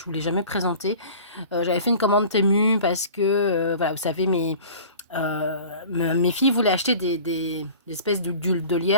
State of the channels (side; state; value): both; inverted; correlation -0.42